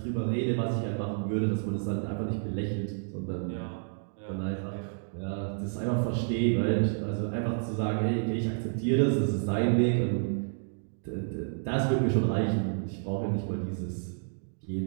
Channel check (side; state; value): left; silent; digital silence